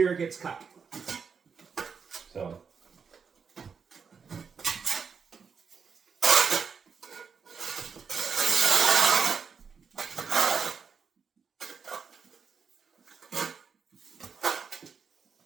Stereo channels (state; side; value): quieter; left; 6.0 dB